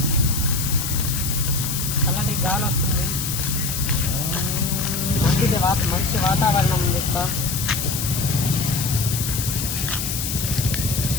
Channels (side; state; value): left; noise; hiss, 3 dB below the sound